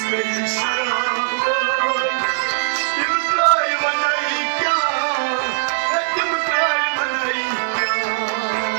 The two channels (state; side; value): silent; left; 66 dB below the other